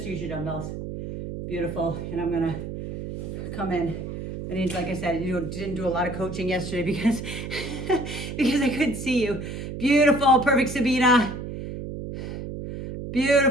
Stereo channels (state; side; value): noise; right; hum, 7 dB below the sound